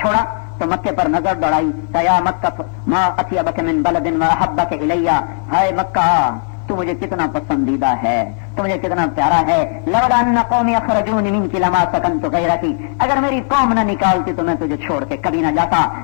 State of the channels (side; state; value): right; silent; 69 dB below the other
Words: چھوڑا تو مکے پر نظر دوڑائی, یا مکہ ما اطیبک من بلد واحبک الی. ہائے مکہ, تو مجھے کتنا پسندیدہ ہے, تو مجھے کتنا پیارا ہے. لولا ان قومی اخرجونی منک لما سکنت غیرک. اگر میری قوم نہ نکالتی تو میں تجھے چھوڑ کے کبھی نہ جاتا.